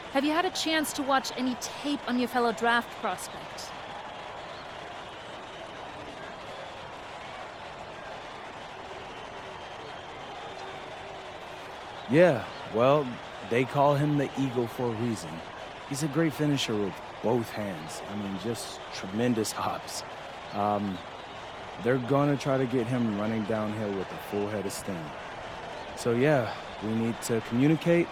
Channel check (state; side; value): identical; both; correlation 1.00